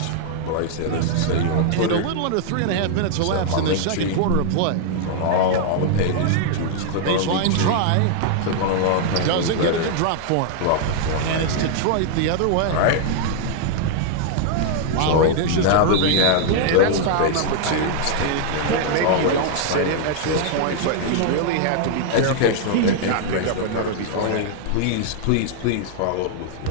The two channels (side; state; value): both; different; correlation 0.00